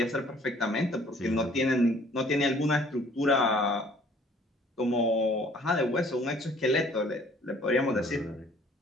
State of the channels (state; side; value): normal; both; correlation 0.56